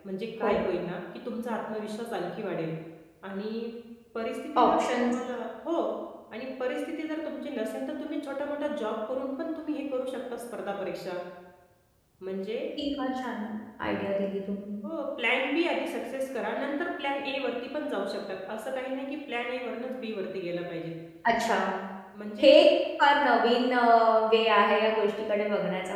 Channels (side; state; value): both; identical; correlation 1.00